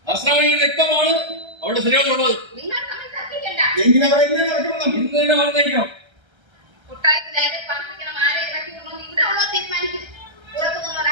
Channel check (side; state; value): left; late; 1.3 ms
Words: നസ്രാണിയുടെ രക്തമാണ് അവിടെ ശരിയാണുള്ളത്. നിങ്ങൾ തമ്മിൽ തർക്കിക്കണ്ട. എങ്കിലും അവരെ ഇങ്ങനെ നടക്കണം. ഇന്ന് തന്നെ പറഞ്ഞേക്കണം. കൊട്ടാരത്തിൽ ആരെ പാർപ്പിക്കണം, ആരെ ഇറക്കിക്കണം ഇവിടെ ഉള്ളത് തീരുമാനിക്കും. പുറത്തുനിന്നവർ